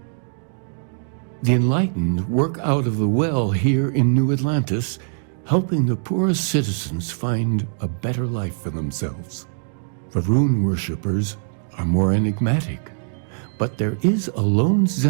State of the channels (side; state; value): left; silent; digital silence